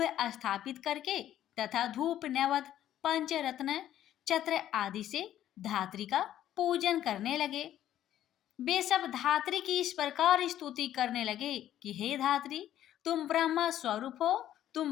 स्थापित करके तथा धूप, नैवेद्य, पंचरत्न, छत्र आदि से धात्री का पूजन करने लगे। वे सब धात्री की इस प्रकार स्तुति करने लगे कि हे धात्री, तुम ब्रह्मा स्वरूप हो,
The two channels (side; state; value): right; quieter; 11.9 dB